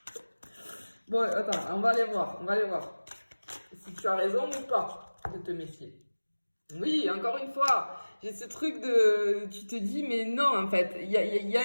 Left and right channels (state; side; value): inverted; both; correlation -1.00